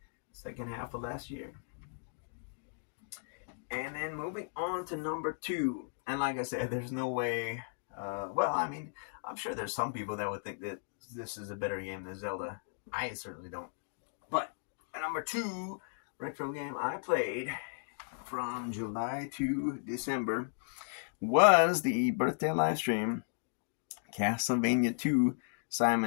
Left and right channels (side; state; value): right; silent; digital silence